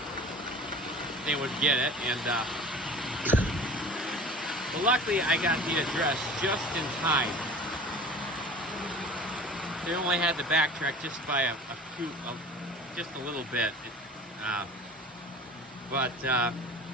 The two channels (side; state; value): both; normal; correlation 0.40